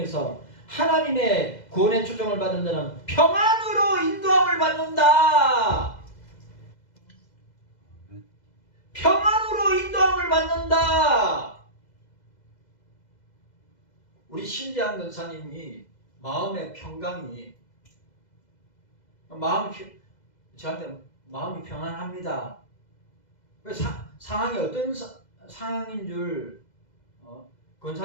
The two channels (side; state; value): right; late; 2.0 ms